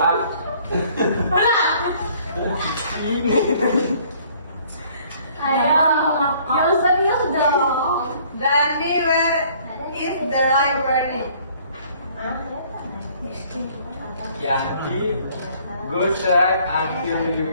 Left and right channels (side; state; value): both; inverted; correlation -0.58